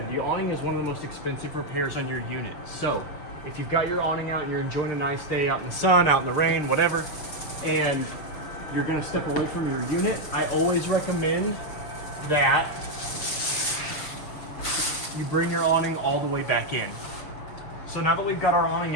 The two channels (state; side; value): late; right; 6.6 ms